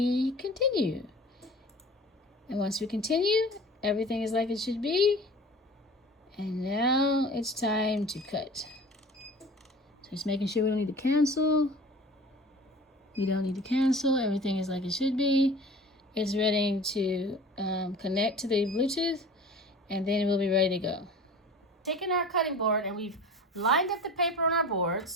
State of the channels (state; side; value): normal; both; correlation 0.40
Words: continue. And once we continue, everything is like it should be. And now it's time to cut. So just making sure we don't need to cancel. We don't need to cancel. Everything is like it should be. It's ready to connect to the Bluetooth, and then we'll be ready to go. Taking our cutting board, and we've lined up the paper on our